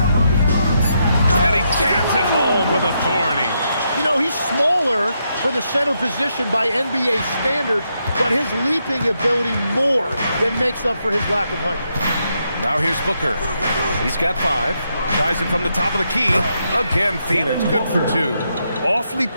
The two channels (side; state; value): both; inverted; correlation -0.80